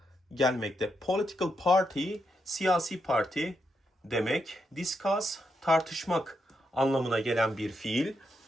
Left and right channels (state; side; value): normal; both; correlation 0.82